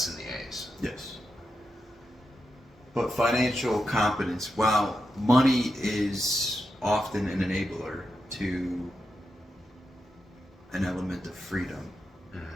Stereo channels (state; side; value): normal; both; correlation 0.87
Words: and the A's. Yes. But financial competence, while money is often an enabler to an element of freedom,